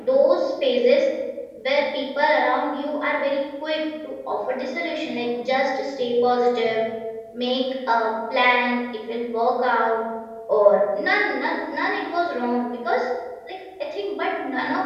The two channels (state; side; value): identical; both; correlation 1.00